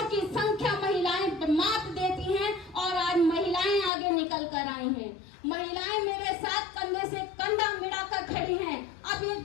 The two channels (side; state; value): right; drops out; at 3.9 s